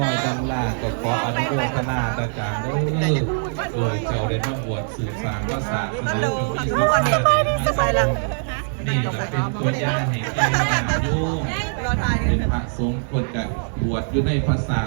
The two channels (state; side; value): silent; left; 64 dB below the other